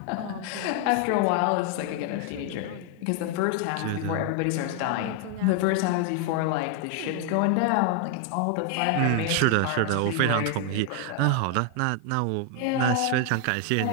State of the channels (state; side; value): different; both; correlation 0.00